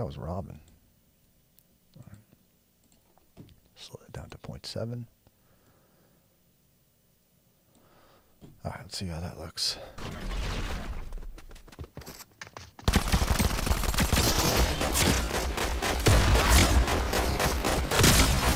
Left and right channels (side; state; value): both; identical; correlation 1.00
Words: was Robin. Right. Slow it down to 0.7. Alright, let's see how that looks.